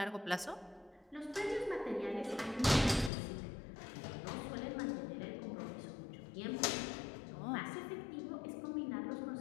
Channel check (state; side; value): drops out; right; at 3.1 s